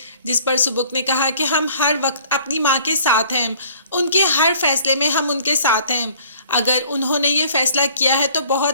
जिस पर सुबुक ने कहा कि हम हर वक्त अपनी माँ के साथ हैं, उनके हर फैसले में हम उनके साथ हैं। अगर उन्होंने ये फैसला किया है तो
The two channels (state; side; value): inverted; both; correlation -0.54